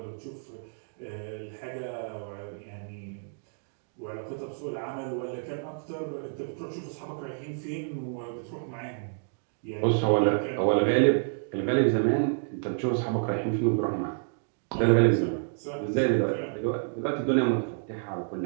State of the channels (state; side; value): silent; left; digital silence